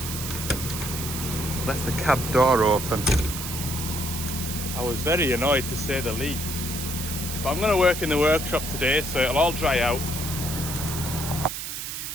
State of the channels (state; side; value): noise; right; hiss, 6 dB below the sound